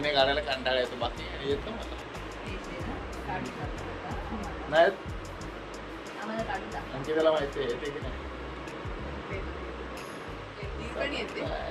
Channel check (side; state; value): both; identical; correlation 1.00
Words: काढायला कंटाळा येतो, बाकी येतं मला. नाही आणखी त्याला माहिती आहे येते की नाही.